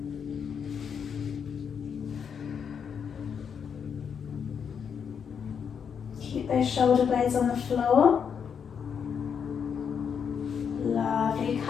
Keep those shoulder blades on the floor. Lovely.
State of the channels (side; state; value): right; quieter; 7.1 dB